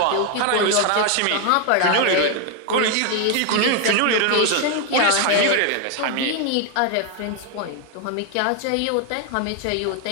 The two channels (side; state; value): both; different; correlation 0.01